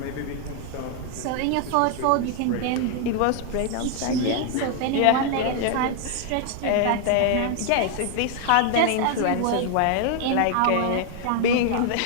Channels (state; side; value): different; both; correlation 0.00